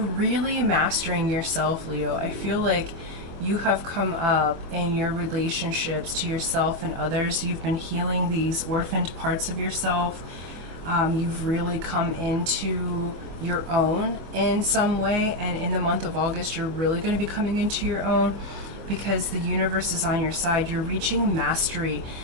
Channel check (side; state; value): left; late; 24 ms